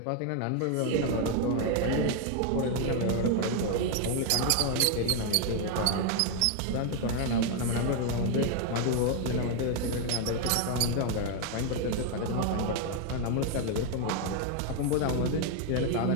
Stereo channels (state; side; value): different; both; correlation 0.01